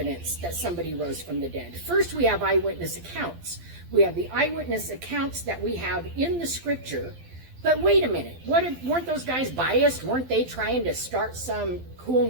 that somebody rose from the dead. First, we have eyewitness accounts. We have the eyewitness accounts that we have in the scripture. But wait a minute, weren't those guys biased? Weren't they trying to start some cool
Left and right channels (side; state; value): left; late; 12 ms